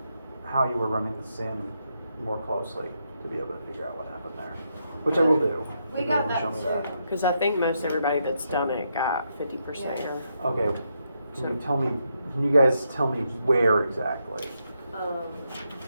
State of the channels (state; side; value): inverted; both; correlation -0.80